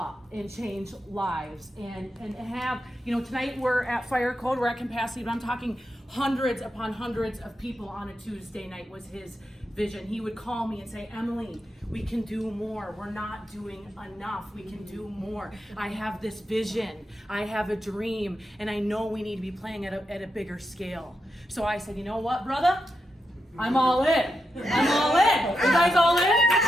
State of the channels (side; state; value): both; normal; correlation 0.86